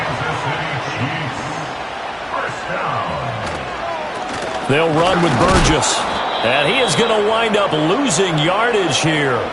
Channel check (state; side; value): identical; both; correlation 1.00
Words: They'll run with Burgess. And he is going to wind up losing yardage here,